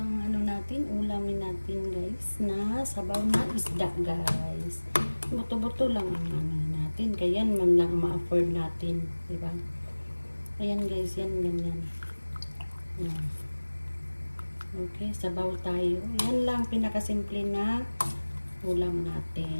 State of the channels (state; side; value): inverted; both; correlation -1.00